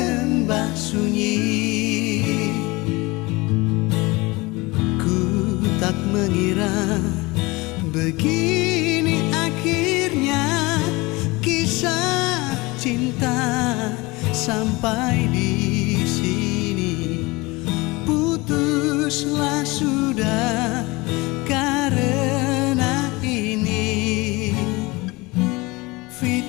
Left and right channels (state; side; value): quieter; right; 23.4 dB